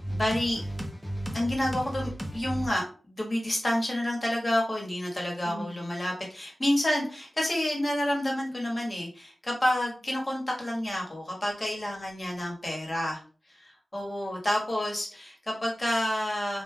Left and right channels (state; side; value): normal; both; correlation 0.96